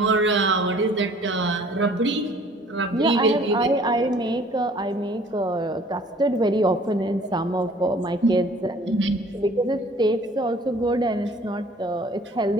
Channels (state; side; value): normal; both; correlation 0.53